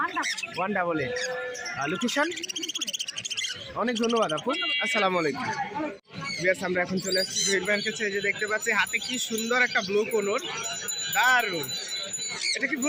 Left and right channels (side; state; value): both; identical; correlation 1.00